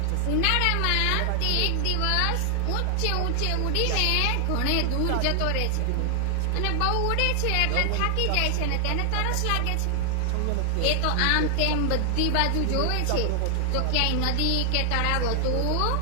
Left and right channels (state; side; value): different; both; correlation 0.00